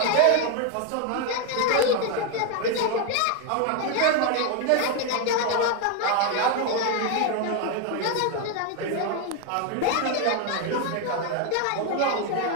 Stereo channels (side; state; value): both; different; correlation 0.01